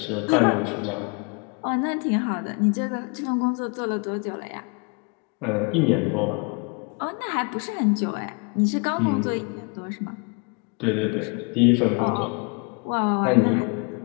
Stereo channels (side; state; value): right; quieter; 33.5 dB